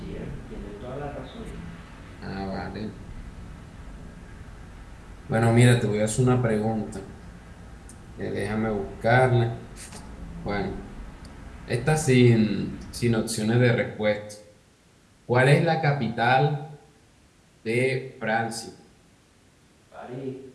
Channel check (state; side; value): identical; both; correlation 1.00